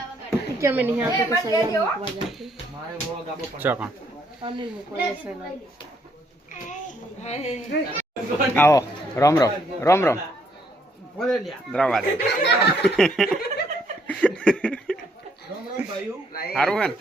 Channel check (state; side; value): normal; both; correlation 0.70